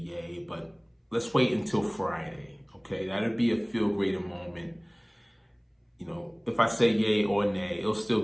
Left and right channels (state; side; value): identical; both; correlation 1.00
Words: but let's wait until Friday, okay? That'll be a FeeLgr8r moment. You know, if I say yay or nay, it'll still